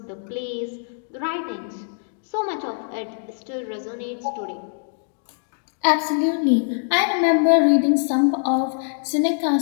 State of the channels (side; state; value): right; silent; digital silence